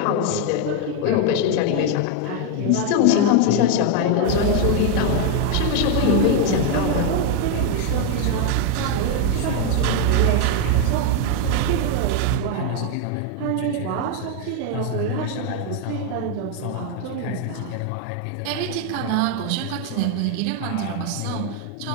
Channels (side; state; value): both; different; correlation 0.01